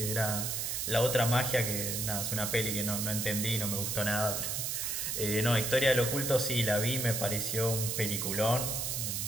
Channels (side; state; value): right; noise; hiss, 1 dB below the sound